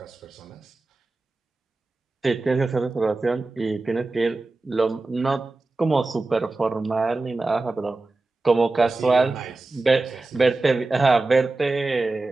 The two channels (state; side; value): quieter; left; 3.3 dB